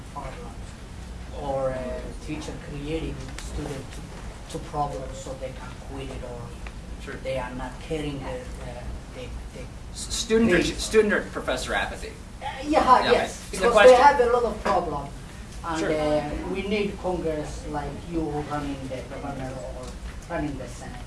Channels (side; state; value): both; identical; correlation 1.00